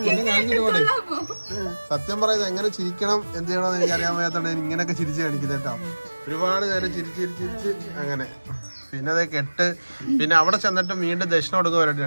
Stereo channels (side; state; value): both; inverted; correlation -1.00